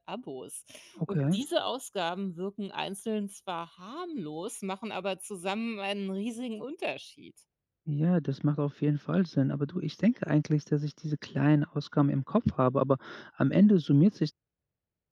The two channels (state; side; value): identical; both; correlation 1.00